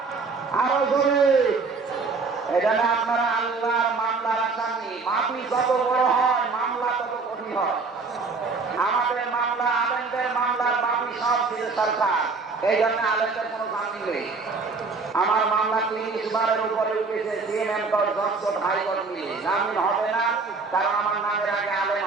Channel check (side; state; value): left; quieter; 4.3 dB